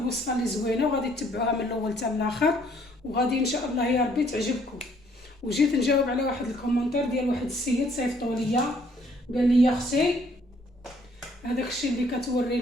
اللي زوينة وغادي تتبعوها من الاول حتى الاخر، وغادي ان شاء الله يا ربي تعجبكم. وجيت نجاوب على واحد الكومنتير ديال واحد السيد صيفطو ليا، قال لي يا اختي هذاك الشيء اللي كتوري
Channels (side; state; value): both; normal; correlation 0.64